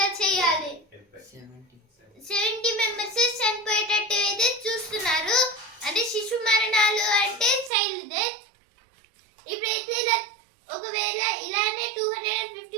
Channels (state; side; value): drops out; left; at 7.7 s